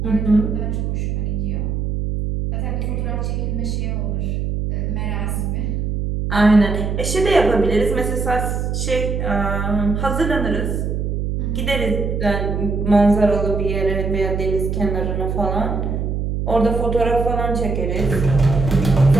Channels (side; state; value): right; noise; hum, 1 dB below the sound